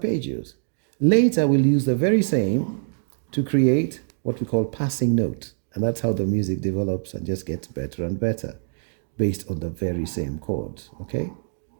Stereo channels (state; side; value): silent; left; digital silence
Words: Later, we'll use the very same to create what we call passing notes, and that's how the music develops and just gets better and better based on the very same chords. Okay,